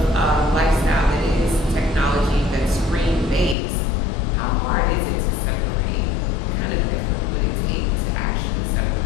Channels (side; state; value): right; drops out; at 3.6 s